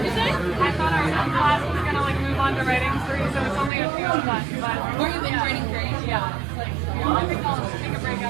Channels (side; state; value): left; drops out; at 3.7 s